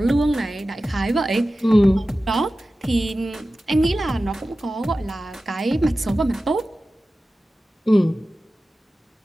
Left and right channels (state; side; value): normal; both; correlation 0.95